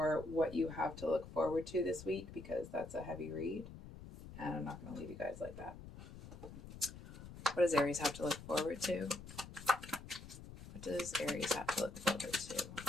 what you have to look forward to this week, because that's a heavy read. And I'm not going to leave you guys like that. What does Aries have to look forward to? What does Aries have to look forward to?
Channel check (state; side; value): noise; left; rumble, 14 dB below the sound